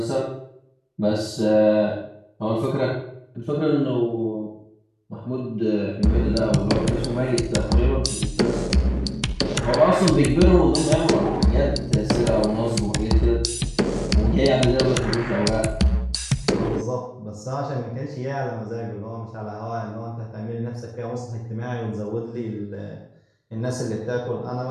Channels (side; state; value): both; identical; correlation 1.00